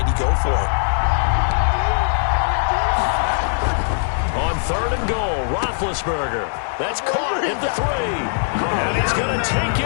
he go for it? On 3rd and goal, Roethlisberger. That's caught at the 3. And he's going to take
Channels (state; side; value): silent; right; digital silence